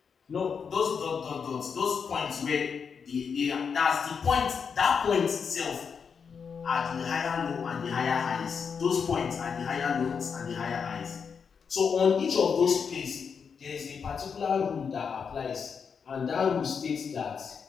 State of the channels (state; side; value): quieter; right; 6.3 dB